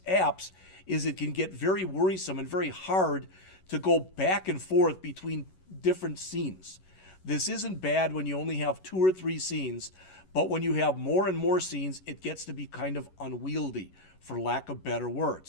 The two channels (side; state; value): right; late; 11 ms